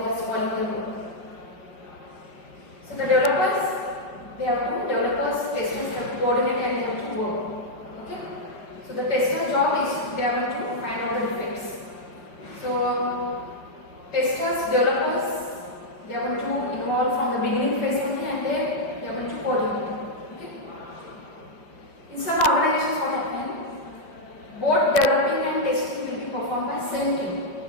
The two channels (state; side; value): late; right; 5.3 ms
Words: are spoiling the work. So the developers, testers have to coordinate and they have to work. So the tester job is they are going to find out the defects. So testers, developers, they are going to involve from the beginning phase only, and then they are going to coordinate. Okay? In some organizations, what happens? Both developing and testing will be performed by same team.